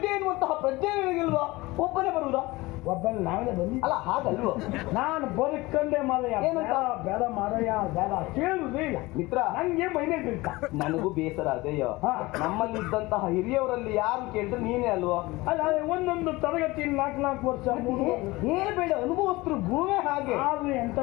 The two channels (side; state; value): right; quieter; 21.1 dB